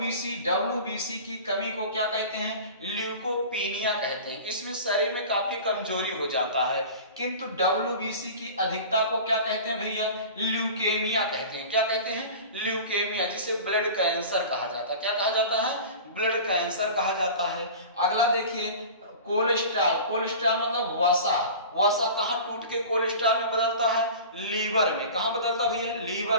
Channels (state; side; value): inverted; both; correlation -0.37